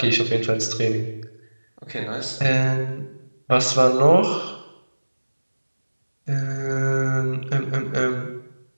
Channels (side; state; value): both; inverted; correlation -1.00